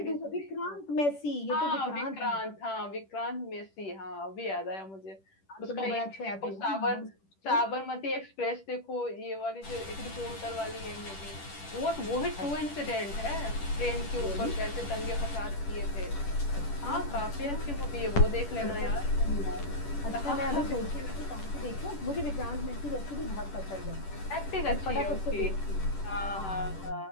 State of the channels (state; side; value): late; right; 10 ms